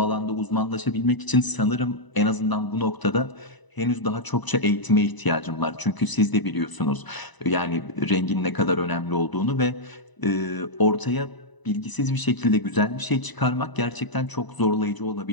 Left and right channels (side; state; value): right; late; 1.0 ms